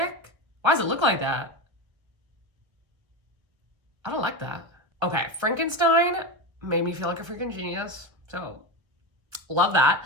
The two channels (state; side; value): late; left; 1.5 ms